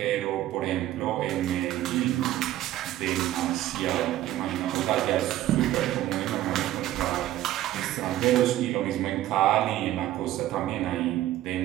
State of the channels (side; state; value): left; quieter; 14.1 dB